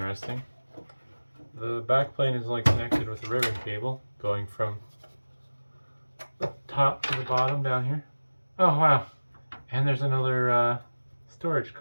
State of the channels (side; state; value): both; inverted; correlation -1.00